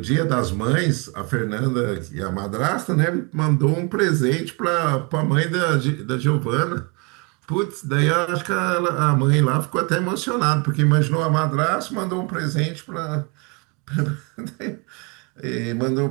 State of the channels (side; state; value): left; quieter; 30.8 dB